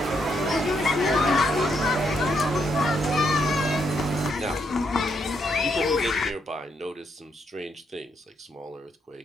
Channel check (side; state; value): both; normal; correlation 0.76